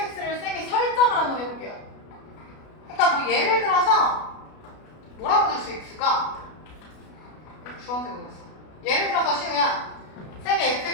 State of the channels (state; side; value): late; right; 33 ms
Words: 쌤이 설정을 한번 해볼게요. 그러니까 뭐 예를 들어서 뭐라고 될 수 있을까? 주황색으로 했어. 예를 들어서 시우야 쌤이